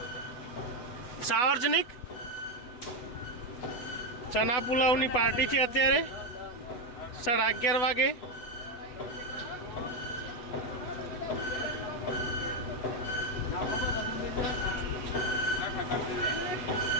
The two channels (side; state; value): right; late; 8.1 ms